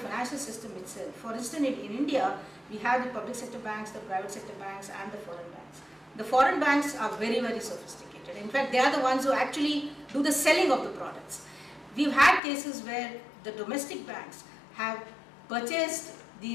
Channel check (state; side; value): drops out; right; at 12.4 s